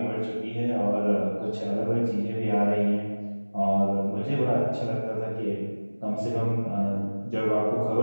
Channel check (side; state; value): both; inverted; correlation -1.00